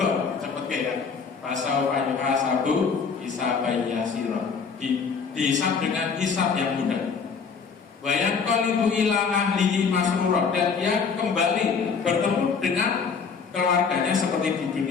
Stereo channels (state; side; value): quieter; right; 5.6 dB